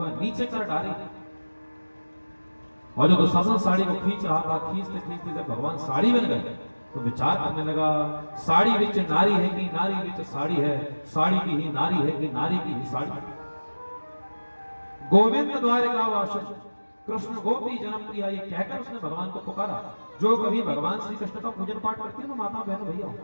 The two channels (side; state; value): both; inverted; correlation -1.00